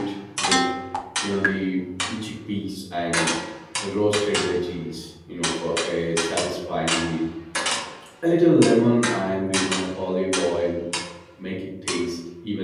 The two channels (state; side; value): identical; both; correlation 1.00